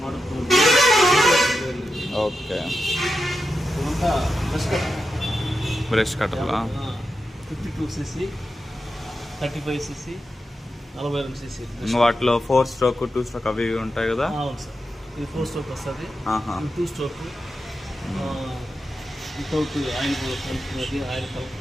ఓకే. బ్రష్ కట్టర్లా 52cc, 35cc, 42cc. వాటిలో 4 స్ట్రోక్ 2 స్ట్రోక్ అవి ఉంటాయి కదా? అవును సార్. ఇది 4 స్ట్రోక్ వస్తుంది, 2 స్ట్రోక్ వితౌట్ ఆయిల్ కలుపుకున్నది, ఆయిల్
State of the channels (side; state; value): both; normal; correlation 0.89